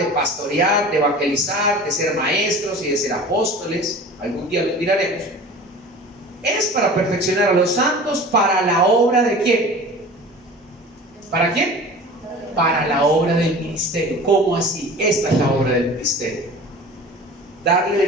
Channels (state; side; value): normal; both; correlation 0.39